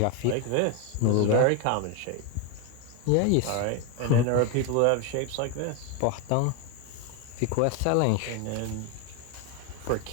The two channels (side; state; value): both; different; correlation 0.02